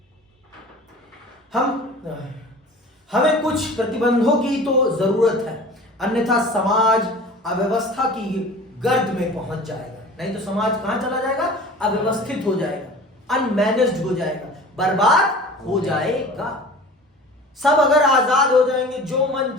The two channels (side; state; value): both; normal; correlation 0.41